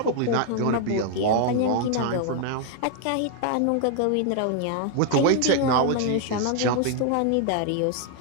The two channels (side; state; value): both; different; correlation 0.00